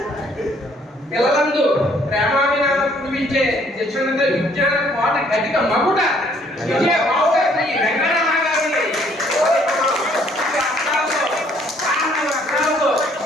పిల్లలందు ప్రేమాభినామం కురిపించే శిక్షణ విజ్ఞాన కోట గతిక మగుట విజయ బావుగా శ్రీ వెంకటరమణ గారిని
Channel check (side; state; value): both; normal; correlation 0.63